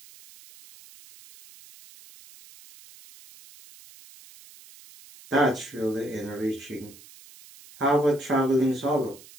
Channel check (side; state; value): right; noise; hiss, 21 dB below the sound